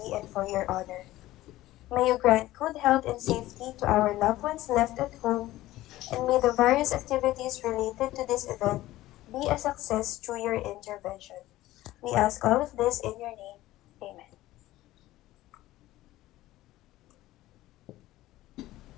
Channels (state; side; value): quieter; right; 16.2 dB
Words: and for your honor. May you grant good health and safety to our loved ones left at home, and may the various activities related to this event be a success through your intervention. We ask all of this in your name. Amen.